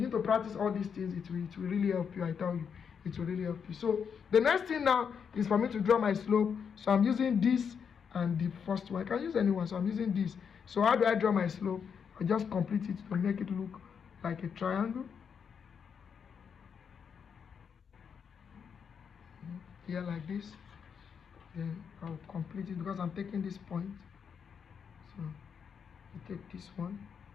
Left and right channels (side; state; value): right; quieter; 6.9 dB